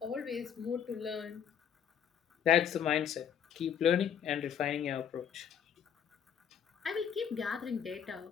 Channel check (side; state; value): right; quieter; 8.4 dB